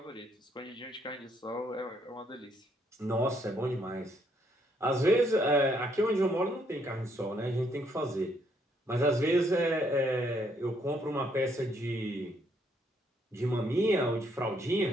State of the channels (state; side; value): normal; both; correlation 0.71